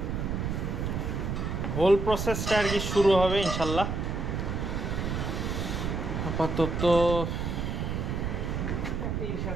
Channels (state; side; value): noise; right; rumble, 2 dB below the sound